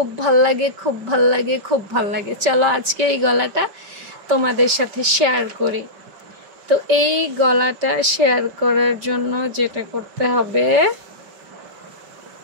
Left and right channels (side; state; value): left; late; 5.1 ms